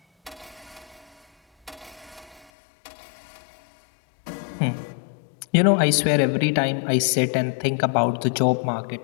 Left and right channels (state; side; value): drops out; right; at 2.5 s